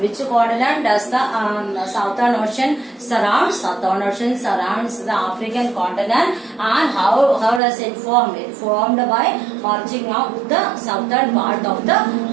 Which continent does the Southern Ocean surrounds? Southern Ocean surrounds the African continent. And how does it form? It formed by merging of the southern part of the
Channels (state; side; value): drops out; left; at 7.6 s